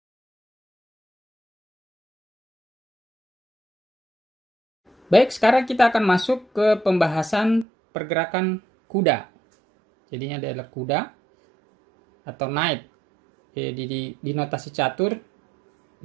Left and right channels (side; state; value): left; drops out; at 7.7 s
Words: Baik, sekarang kita akan masuk ke pembahasan pergerakan kuda. Jadinya adalah kuda atau knight. Di notasi catur